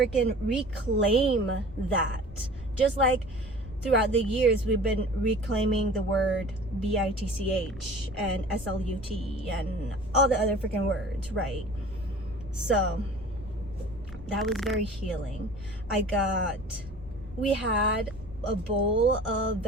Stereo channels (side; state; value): left; noise; rumble, 16 dB below the sound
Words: reclaim that. Just like throughout the years, we've been reclaiming the word BITCH and SLUT and all the other freaking words, right? So that was very healing. We had a bowl of